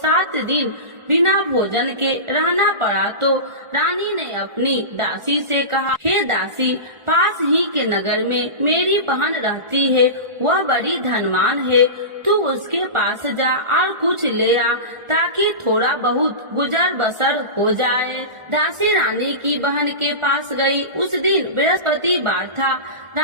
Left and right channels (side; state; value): left; late; 1.4 ms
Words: दिन बिना भोजन के रहना पड़ा तो रानी ने अपनी दासी से कहा, हे दासी, पास ही के नगर में मेरी बहन रहती है, वह बड़ी धनवान है, तू उसके पास जा और कुछ ले आ ताकि थोड़ा बहुत गुजर बसर हो जाए। दासी रानी की बहन के पास गई। उस दिन बृहस्पतिवार था।